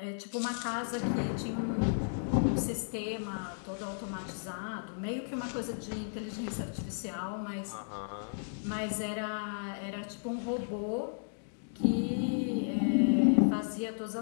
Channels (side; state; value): right; silent; digital silence